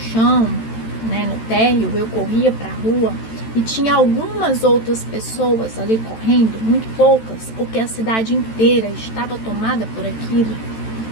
né, no térreo, eu corria para a rua e tinha algumas outras pessoas ali correndo, muito poucas, porque a cidade inteira estava tomada por aquilo.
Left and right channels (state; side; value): late; right; 13 ms